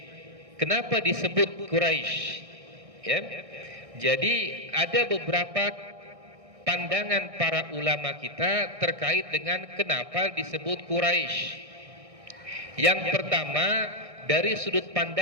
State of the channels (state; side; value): late; left; 1.6 ms